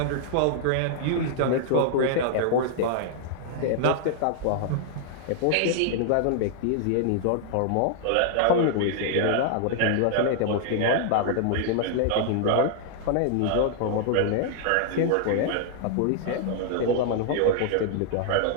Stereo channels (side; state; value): both; different; correlation -0.01